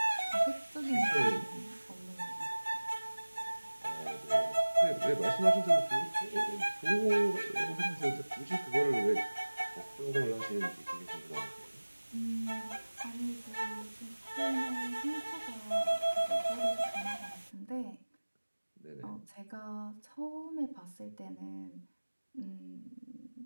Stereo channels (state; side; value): inverted; both; correlation -1.00